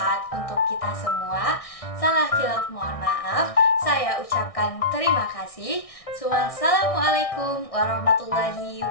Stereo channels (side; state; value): right; late; 1.6 ms